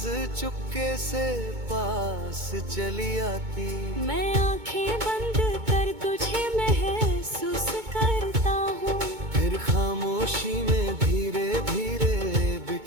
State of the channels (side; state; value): left; late; 2.2 ms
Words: चुपके से पास चली आती। मैं आंखें बंद कर तुझे महसूस करता हूँ, फिर खामोशी में धीरे धीरे